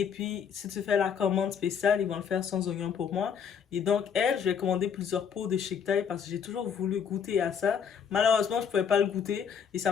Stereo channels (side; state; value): right; quieter; 7.3 dB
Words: puis, si tu fais la commande spéciale, ils vont le faire sans oignon pour moi. Et donc, elle, je lui ai commandé plusieurs pots de Chic Thai parce que j'ai toujours voulu goûter à ça. Malheureusement, je pouvais pas le goûter et ça